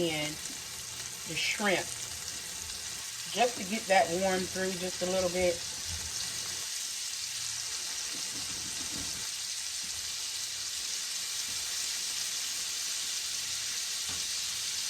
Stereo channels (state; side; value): identical; both; correlation 1.00